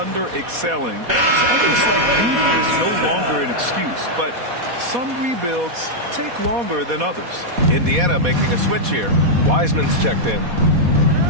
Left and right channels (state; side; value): late; left; 4.1 ms